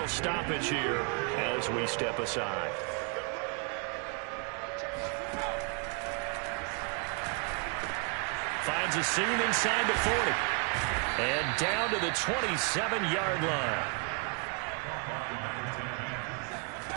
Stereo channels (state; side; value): quieter; left; 36.3 dB